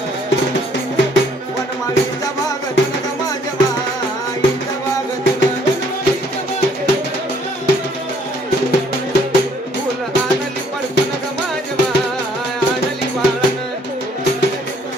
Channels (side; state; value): both; normal; correlation 0.63